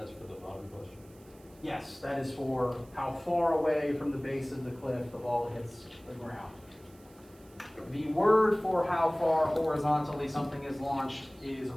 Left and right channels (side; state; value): right; noise; hiss, 28 dB below the sound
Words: that's for the bottom question. Yes, that is for how far away from the base of the cliff the ball hits the ground. The word for how far horizontally something is launched is